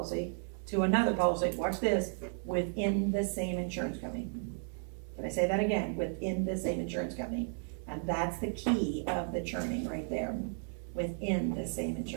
to another policy, watch this, within the same insurance company. Can I say that again? Within the same insurance company. And that's the key of the churning right there, within the same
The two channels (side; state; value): left; silent; 55 dB below the other